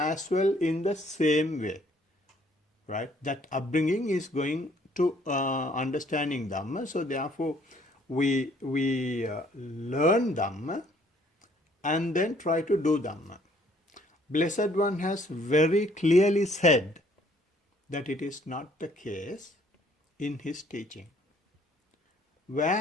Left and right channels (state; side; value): normal; both; correlation 0.62